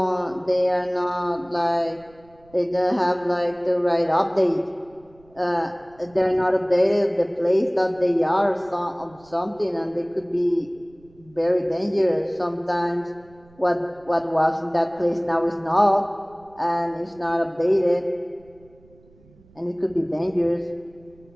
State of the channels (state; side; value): noise; right; rumble, 28 dB below the sound